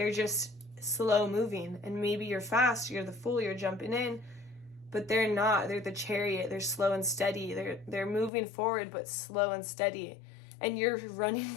just slow moving, and maybe you're fast, you're the fool, you're jumping in, but they're not. They're the chariot. They're slow and steady. They're moving forward but slow and steady, and you're running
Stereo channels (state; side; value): drops out; right; at 8.3 s